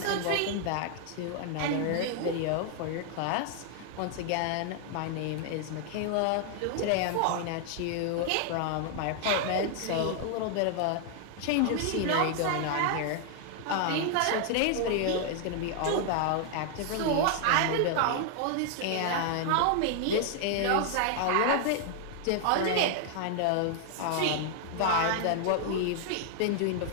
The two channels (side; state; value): both; different; correlation 0.00